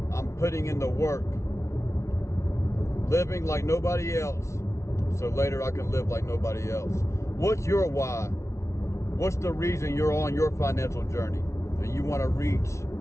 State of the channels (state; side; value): late; right; 0.14 ms